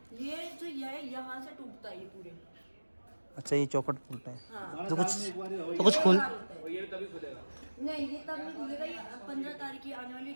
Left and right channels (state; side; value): inverted; both; correlation -1.00